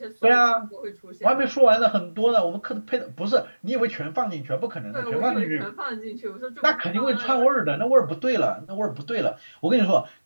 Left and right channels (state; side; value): inverted; both; correlation -1.00